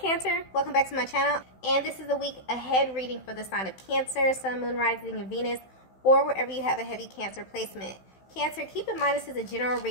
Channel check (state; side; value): late; right; 16 ms